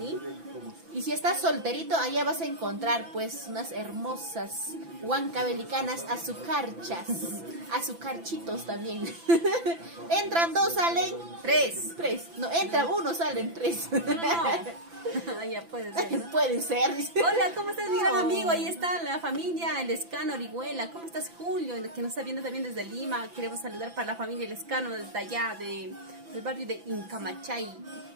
Y si estás solterito, allá vas a encontrar pues unas hermosas huancabelicanas azucarchas, azucarchitos también. Entran dos, salen tres. No, entra uno, salen tres. No. Ya puedes ver, ¿no? Puede ser, dice. Hola, ¿cómo estás, mi gran amigo? Ahí está la familia El Escano Orihuela. ¿Cómo estás, Julio? Que nos está viendo también desde Lima. Queremos saludar para la familia El Escano desde allá, del barrio de Incamachay.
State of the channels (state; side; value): late; left; 5.9 ms